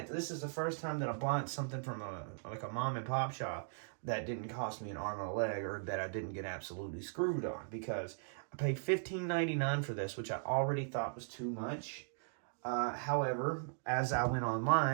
this is the first time that I bought something from a mom and pop shop that didn't cost me an arm and a leg, or that I didn't get absolutely screwed on, because I paid $15.99 for this, which I already thought was too much. However, as I went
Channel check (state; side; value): silent; left; digital silence